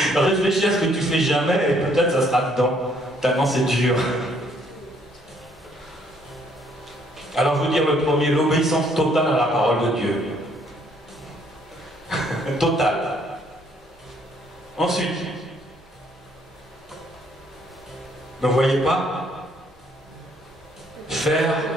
Réfléchis à ce que tu fais jamais et peut-être ça sera dedans. Tellement c'est dur. Alors je veux dire le premier, l'obéissance totale à la parole de Dieu. Totale. Ensuite, ne voyez pas faire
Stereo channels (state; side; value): normal; both; correlation 0.66